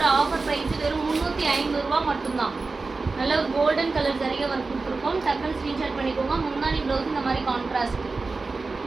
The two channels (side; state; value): left; quieter; 3.9 dB